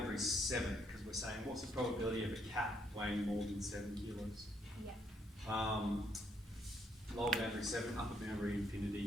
is 7 because we're saying what's the probability of a cat weighing more than 7 kilos? Yeah. Lower boundary 7, upper boundary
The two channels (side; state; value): both; normal; correlation 0.71